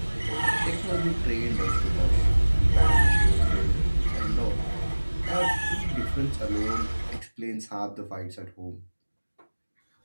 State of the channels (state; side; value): inverted; both; correlation -1.00